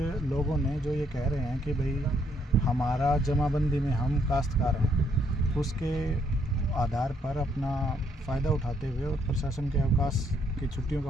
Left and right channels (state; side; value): normal; both; correlation 0.71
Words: लोगों ने जो ये कह रहे हैं कि भाई हमारा जमाबंदी में हम काश्तकार हैं, उसके आधार पर अपना फ़ायदा उठाते हुए और प्रशासन के अवकाश की छुट्टियों का